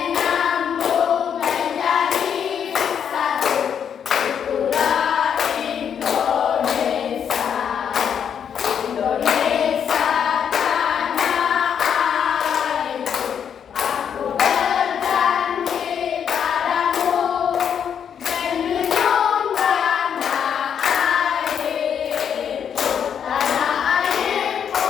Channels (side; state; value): right; quieter; 8.1 dB